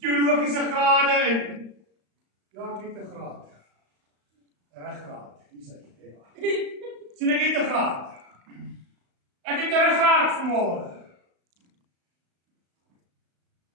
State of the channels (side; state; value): left; late; 35 ms